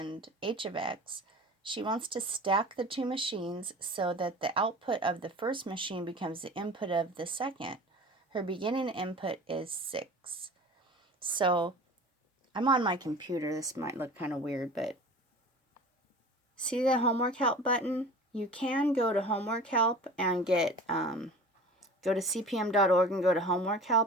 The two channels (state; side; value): normal; both; correlation 0.39